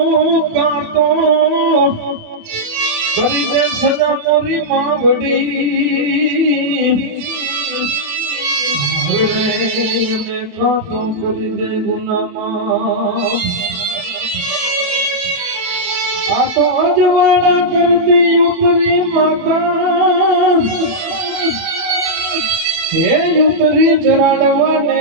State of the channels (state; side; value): late; left; 28 ms